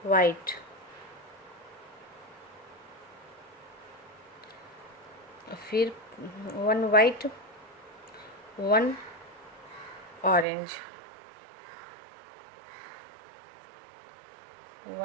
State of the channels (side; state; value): left; drops out; at 10.5 s